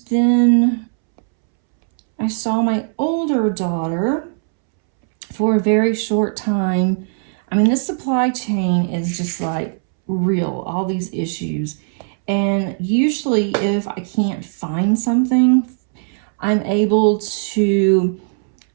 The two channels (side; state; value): left; silent; 67 dB below the other